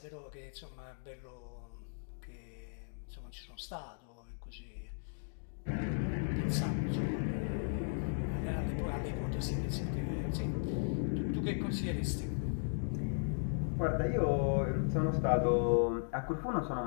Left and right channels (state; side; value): silent; right; digital silence